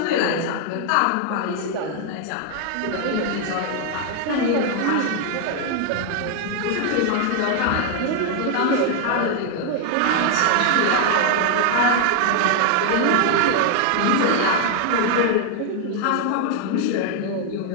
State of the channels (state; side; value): different; both; correlation 0.00